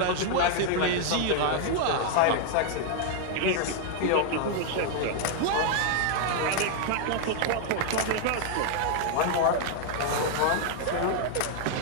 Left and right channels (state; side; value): different; both; correlation 0.00